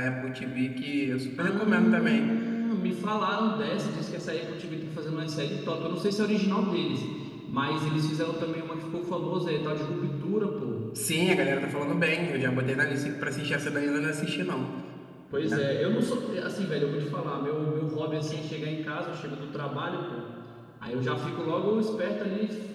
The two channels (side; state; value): both; identical; correlation 1.00